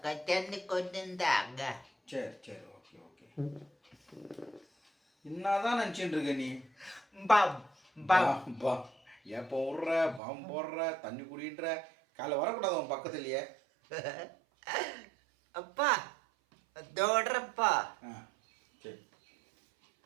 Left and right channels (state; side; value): drops out; left; at 10.2 s